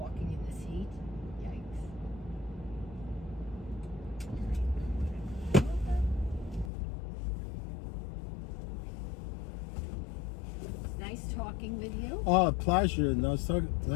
in this heat. Yikes. Nice talking with you. Oh, pleasure. Nice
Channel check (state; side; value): drops out; right; at 6.7 s